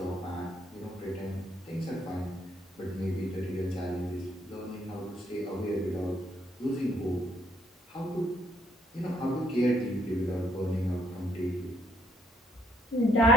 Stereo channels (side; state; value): both; normal; correlation 0.68